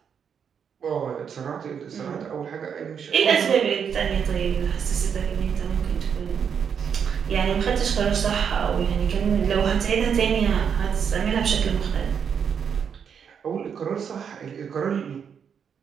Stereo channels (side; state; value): left; quieter; 7.3 dB